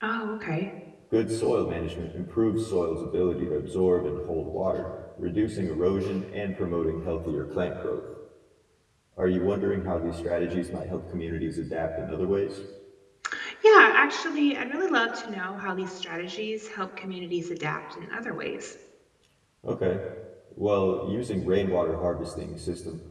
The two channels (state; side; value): identical; both; correlation 1.00